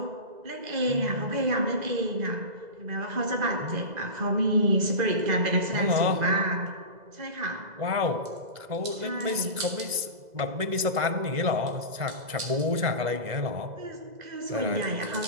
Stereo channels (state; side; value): late; left; 2.0 ms